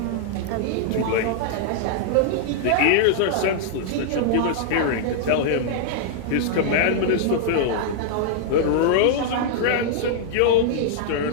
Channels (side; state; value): both; different; correlation -0.01